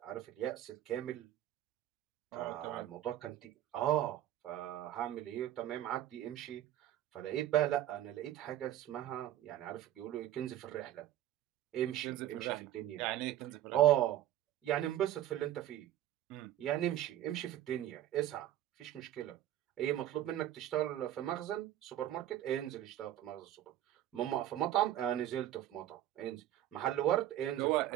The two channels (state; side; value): quieter; left; 12.7 dB